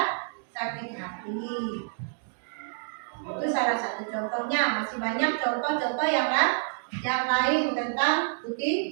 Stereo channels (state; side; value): silent; left; digital silence